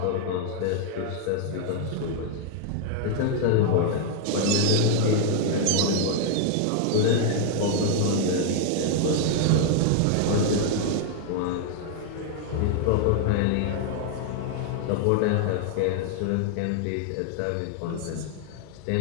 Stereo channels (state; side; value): different; both; correlation 0.00